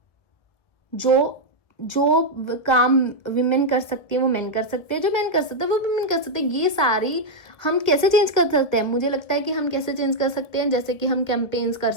जो जो काम विमेन कर सकती है वो मेन कर सकते हैं, जो मेन कर सकते हैं वो विमेन कर सकते हैं। ये सारी हम कैसे चेंज कर सकते हैं? मुझे लगता है कि हम कैसे चेंज कर सकते हैं, जैसे कि हम कैंपेन्स कर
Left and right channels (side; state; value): right; late; 1.5 ms